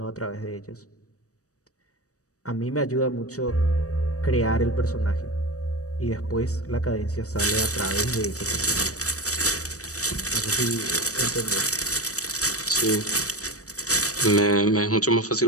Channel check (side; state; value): right; late; 0.66 ms